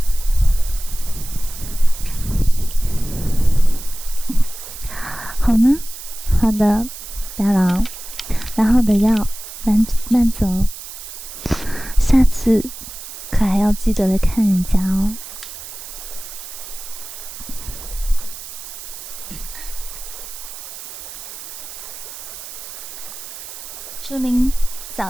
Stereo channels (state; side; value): noise; right; hiss, 12 dB below the sound